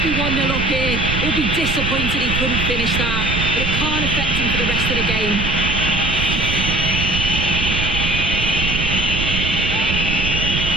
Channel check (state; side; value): noise; right; rumble, 3 dB below the sound